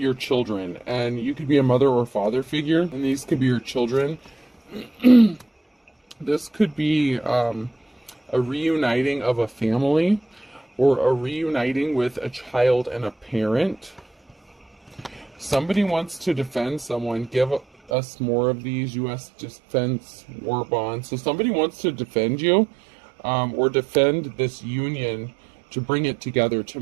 children, and you could be a mother or father figure, and these could be your children. This could be a reuniting of a family, or a reuniting with a child and a parent. Somebody wants to defend someone. Give us more of these U.S. defense war bonds. So somebody wants to defend you, or defend this union, to bring it together, to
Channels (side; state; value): left; drops out; at 17.9 s